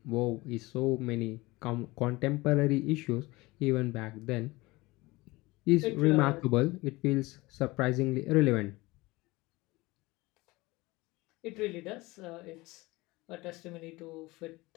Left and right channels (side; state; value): right; quieter; 21.6 dB